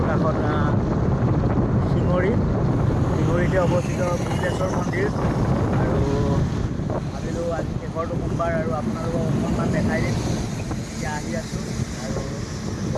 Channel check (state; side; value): identical; both; correlation 1.00